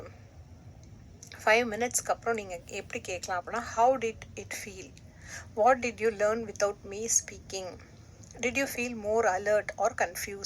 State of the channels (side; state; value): both; identical; correlation 1.00